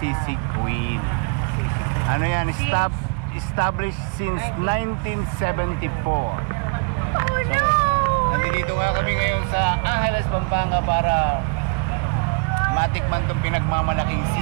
queen. Ano yan, established since 1974. So, nandito nga kami ngayon sa Angeles, Pampanga para matikman itong pinagmamalaking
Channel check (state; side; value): quieter; left; 34.0 dB